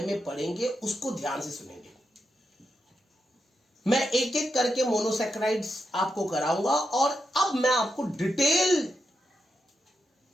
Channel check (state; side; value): normal; both; correlation 0.86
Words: में पढ़ेंगे, उसको ध्यान से सुनेंगे। मैं एक एक करके मोनोसैकेराइड्स आपको कराऊंगा और अब मैं आपको डिटेल